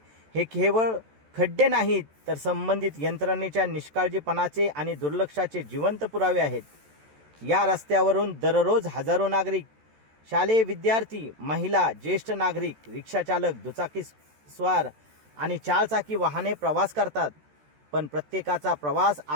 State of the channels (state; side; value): late; left; 13 ms